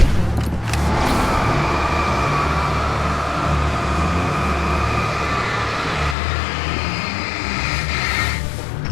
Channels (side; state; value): right; drops out; at 6.2 s